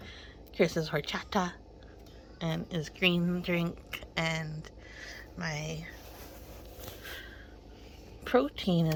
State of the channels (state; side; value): identical; both; correlation 1.00